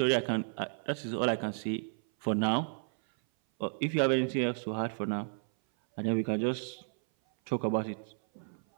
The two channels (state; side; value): silent; left; 56 dB below the other